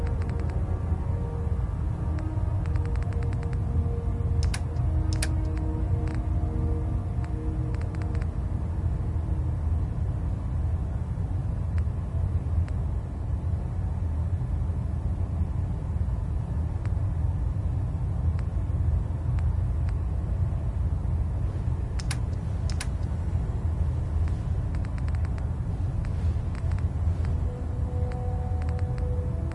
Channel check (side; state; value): both; identical; correlation 1.00